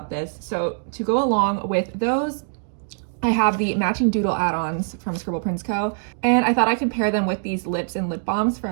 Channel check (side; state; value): left; silent; digital silence